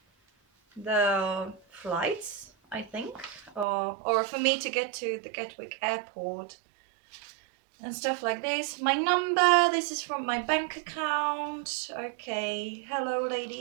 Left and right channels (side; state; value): left; drops out; at 3.7 s